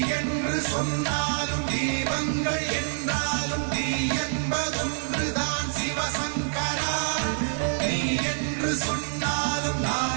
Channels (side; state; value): left; silent; digital silence